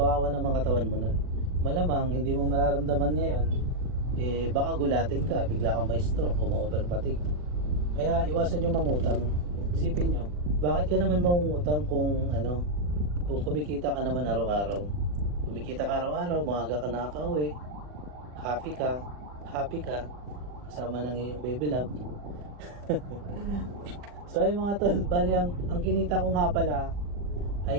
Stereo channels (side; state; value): left; late; 40 ms